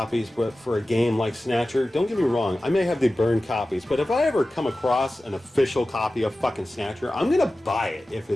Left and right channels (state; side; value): normal; both; correlation 0.95